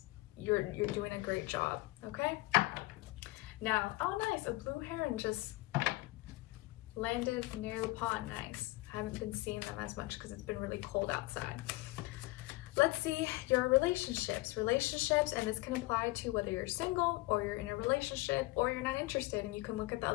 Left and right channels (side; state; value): right; quieter; 21.2 dB